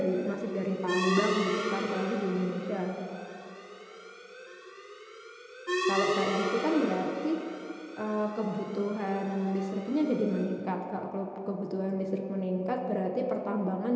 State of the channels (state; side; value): identical; both; correlation 1.00